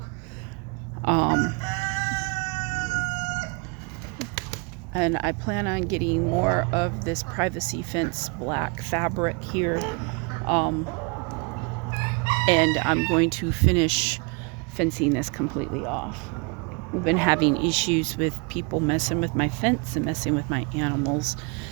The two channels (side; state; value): left; quieter; 31.7 dB